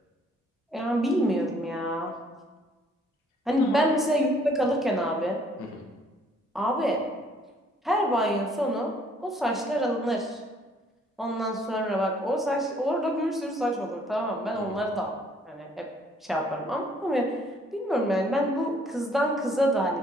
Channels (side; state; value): both; normal; correlation 0.62